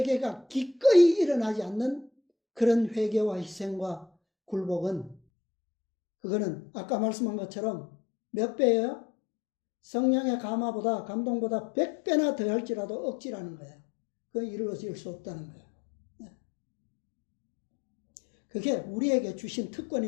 기꺼이 일어나지 않는 그런 회개와 희생과 굴복은, 그거는 아까 말씀한 것처럼 몇 배예요? 성령의 감동보다 100배나 더 할지라도 억지라는 거예요. 그건 이루어질 수 없다는 거예요. 그게 우리에게 주신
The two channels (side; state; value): right; drops out; at 5.2 s